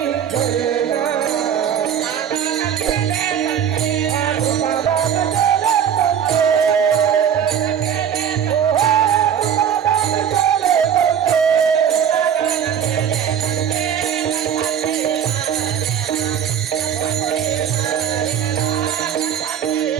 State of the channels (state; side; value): quieter; left; 8.7 dB